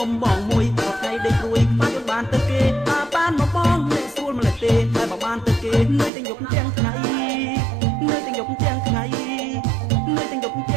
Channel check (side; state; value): left; drops out; at 6.1 s